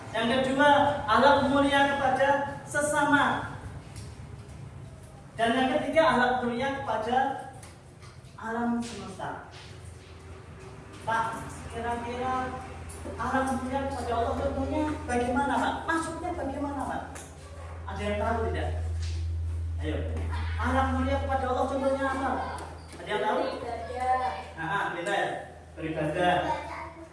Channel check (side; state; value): both; identical; correlation 1.00